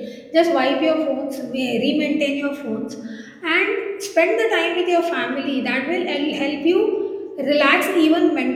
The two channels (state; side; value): identical; both; correlation 1.00